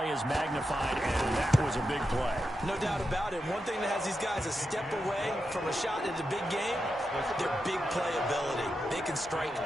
is magnified, and that was a big play. No doubt about it. One thing that has these guys a step away from a shot at the big game, their big play ability. They can strike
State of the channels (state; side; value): normal; both; correlation 0.88